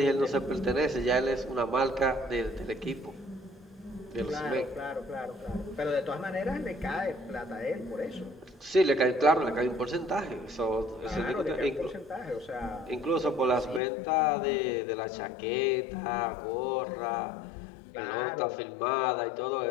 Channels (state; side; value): drops out; right; at 13.8 s